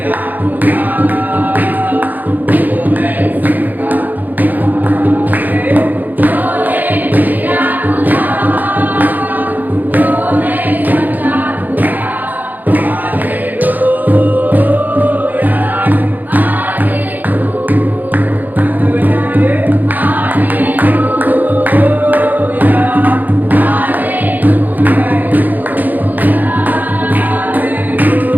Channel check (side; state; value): left; late; 0.084 ms